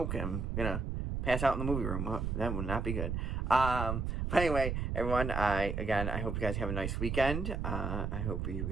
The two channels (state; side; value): noise; right; rumble, 1 dB below the sound